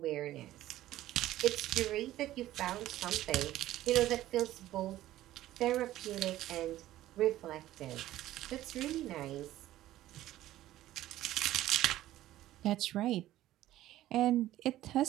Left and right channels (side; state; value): left; quieter; 14.5 dB